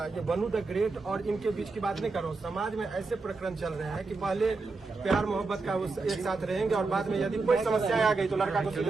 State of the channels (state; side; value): quieter; left; 3.9 dB